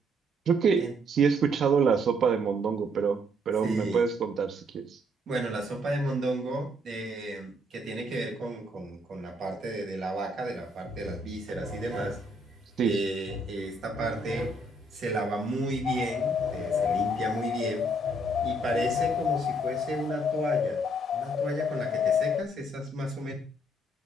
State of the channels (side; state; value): both; normal; correlation 0.68